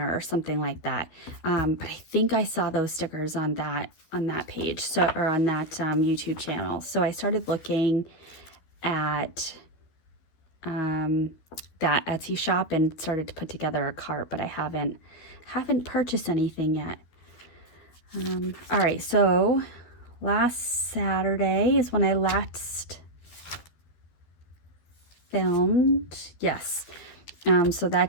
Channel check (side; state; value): right; late; 13 ms